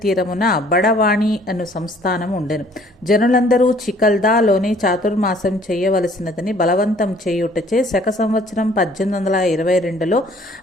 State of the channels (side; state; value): both; normal; correlation 0.57